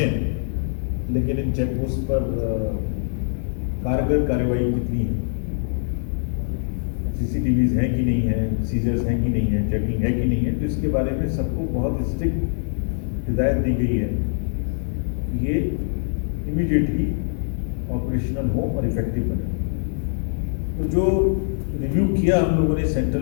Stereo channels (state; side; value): silent; right; 62 dB below the other